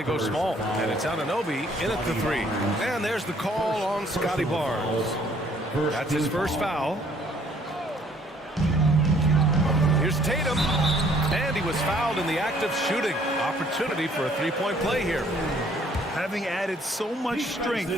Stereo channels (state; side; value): normal; both; correlation 0.61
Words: go small. And it's Anunoby in at the 3. And there's the call on Scotty Barnes. That's his first foul. Here's Tatum. And he was fouled in the act of shooting. Opportunity for a three-point play here. Having added so much strength,